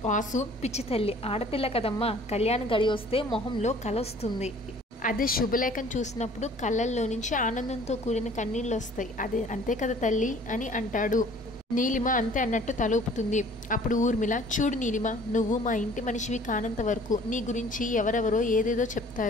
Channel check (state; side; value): normal; both; correlation 0.52